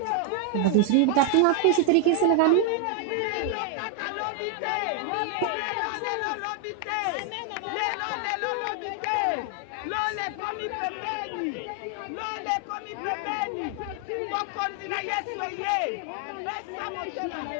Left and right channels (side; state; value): both; different; correlation 0.00